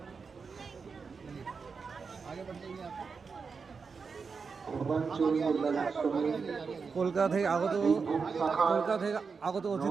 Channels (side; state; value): left; quieter; 5.2 dB